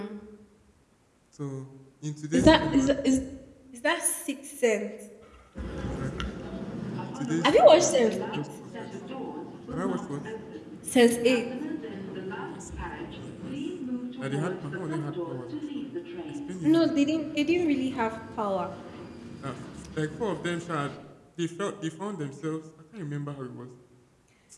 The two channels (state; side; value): identical; both; correlation 1.00